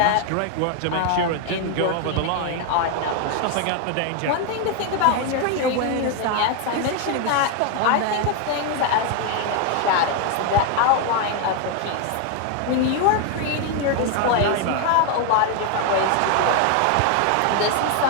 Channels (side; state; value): both; different; correlation 0.01